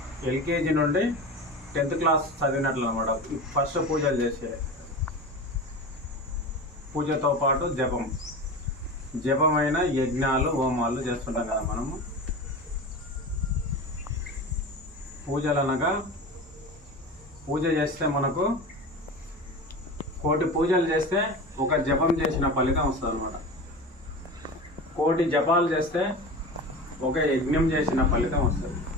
ఎల్కేజీ నుండి 10th క్లాస్ చదివినట్లు అనమాట. ఫస్ట్ పూజలు చేసే పూజతో పాటు జపమైన యజ్ఞాలు, హోమాలు చేస్తుంటాం కదా మనము. పూజలు అనగా పూజ చేస్తే మనకు కోటి పూజలు చేస్తే ఒక జపం చేసిన ఫలితం వస్తుంది అనమాట. కోటి జపాలు చేస్తే ఒక యజ్ఞం చేసిన ఫలితం వస్తుంది.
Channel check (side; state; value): both; normal; correlation 0.30